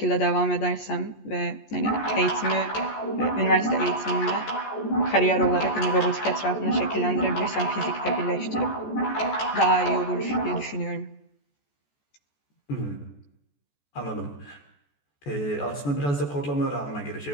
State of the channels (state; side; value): late; right; 14 ms